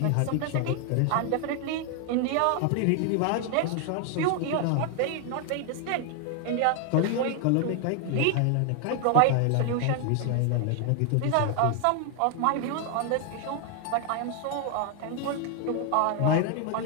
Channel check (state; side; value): different; both; correlation 0.00